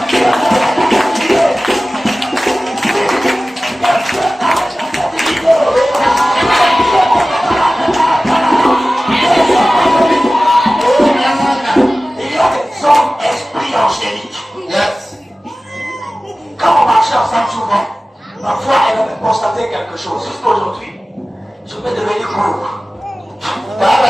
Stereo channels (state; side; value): normal; both; correlation 0.96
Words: Il y a des hommes esprits angéliques. Yes. Quand on marche ensemble souvent, parfois elle avait constaté quelque chose. Jusqu'aujourd'hui, je vais devenir court.